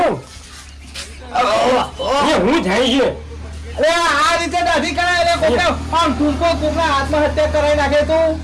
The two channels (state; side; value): identical; both; correlation 1.00